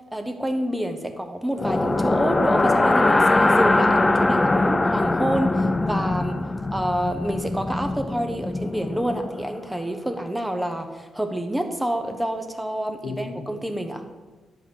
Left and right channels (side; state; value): both; normal; correlation 0.95